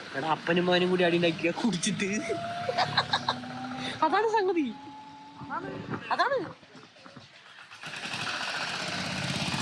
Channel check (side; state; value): both; identical; correlation 1.00